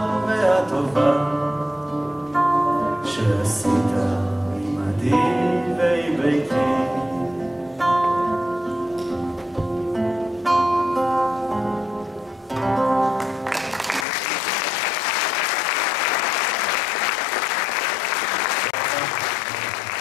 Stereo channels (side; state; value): right; drops out; at 14.1 s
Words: והטובה שעשית עמדי